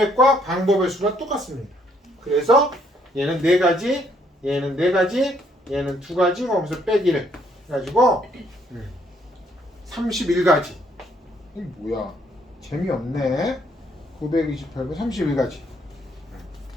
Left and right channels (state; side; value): normal; both; correlation 0.68